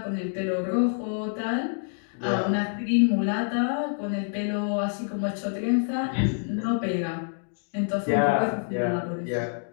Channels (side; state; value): right; silent; digital silence